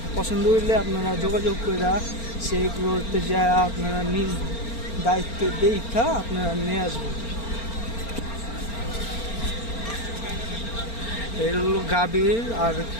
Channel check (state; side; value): late; right; 4.4 ms